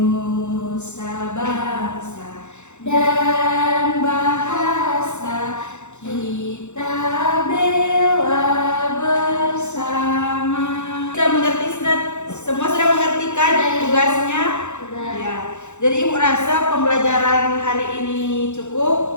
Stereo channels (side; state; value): right; late; 0.83 ms